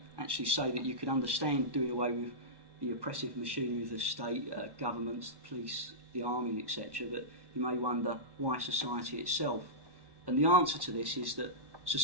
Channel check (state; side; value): late; left; 1.1 ms